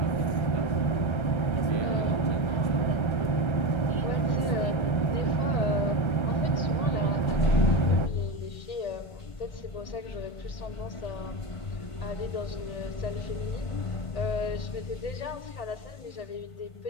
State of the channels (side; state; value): right; late; 1.3 ms